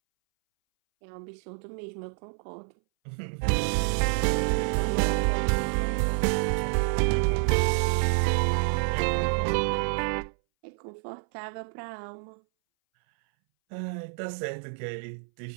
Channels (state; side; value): silent; left; 59 dB below the other